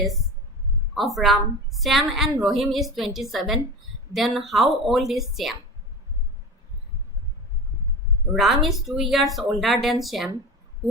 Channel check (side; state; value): both; normal; correlation 0.30